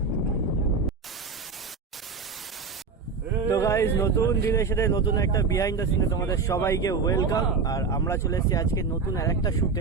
তো গাইজ, নতুন দিনের সাথে নতুন একটা বিহাইন্ড দ্য সিনে তোমাদের সবাইকে ওয়েলকাম। আর আমরা চলে এসেছি আজকে নতুন আর একটা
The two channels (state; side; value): quieter; left; 4.9 dB